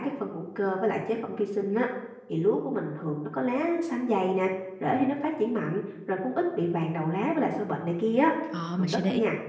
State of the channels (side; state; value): both; identical; correlation 1.00